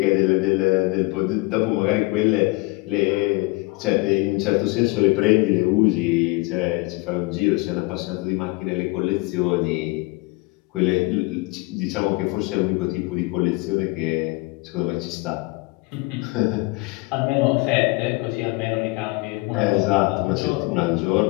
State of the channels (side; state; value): right; quieter; 24.1 dB